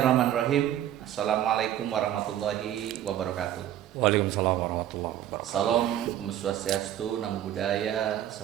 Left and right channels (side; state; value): left; quieter; 11.8 dB